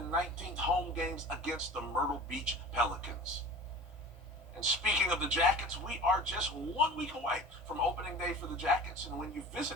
19th home games against the Myrtle Beach Pelicans. And speaking of the Jackets, we are just 1 week away from opening day for the Jackets. And when you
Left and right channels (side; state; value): both; normal; correlation 0.39